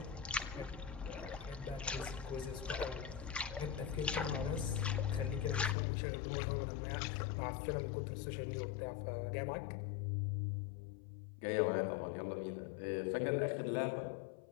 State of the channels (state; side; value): drops out; right; at 5.8 s